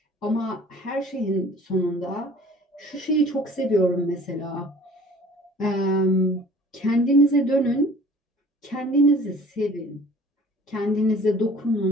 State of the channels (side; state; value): both; normal; correlation 0.50